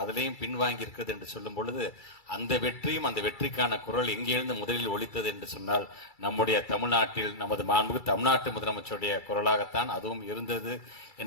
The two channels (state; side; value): late; right; 2.3 ms